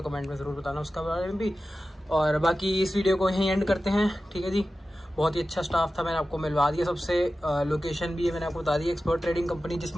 कमेंट में ज़रूर बताना उसका बारे में भी। और बाकी इस वीडियो को यहीं एंड करते हैं, ठीक है जी। बहुत ही अच्छा स्टाफ था, मैंने आपको मिलवा दिया सबसे। लोकेशन भी है मैंने आपको बता दी, एक्सपर्ट ट्रेडिंग कंपनी, जिस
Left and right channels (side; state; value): both; normal; correlation 0.94